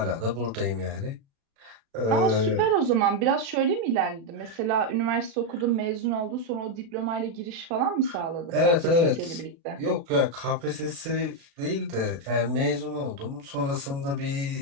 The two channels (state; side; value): late; left; 36 ms